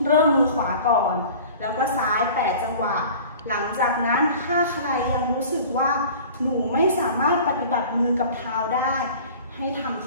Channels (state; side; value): inverted; both; correlation -0.42